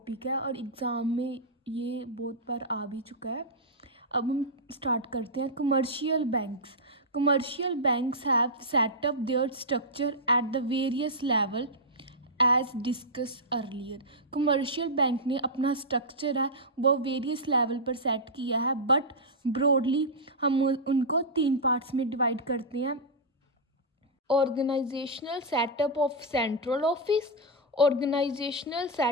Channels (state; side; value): normal; both; correlation -0.09